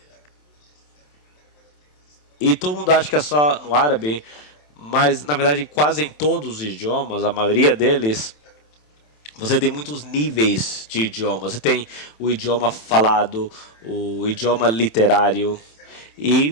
e todo mundo acha que é só no árabe, mas, na verdade, quase em todos os idiomas, a maioria deles, você tem muitos níveis de idiomas. Você tem o idioma falado, o idioma literário,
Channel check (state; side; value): late; right; 27 ms